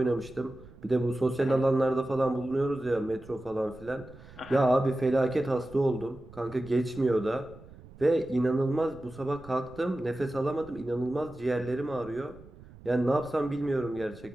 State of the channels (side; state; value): right; noise; rumble, 20 dB below the sound